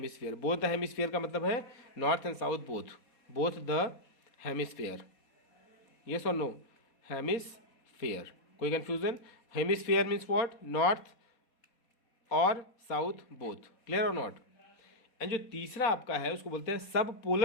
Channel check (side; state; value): right; late; 4.2 ms